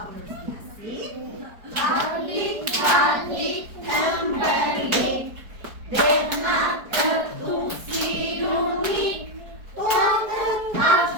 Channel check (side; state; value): left; late; 4.6 ms